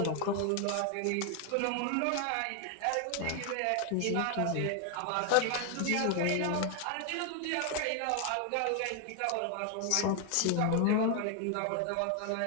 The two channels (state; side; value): different; both; correlation 0.00